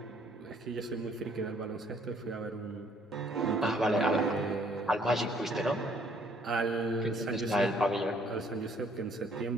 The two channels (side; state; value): both; normal; correlation 0.63